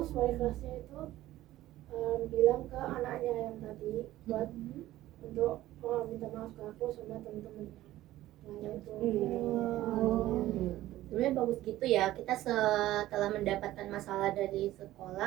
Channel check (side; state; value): left; quieter; 15.2 dB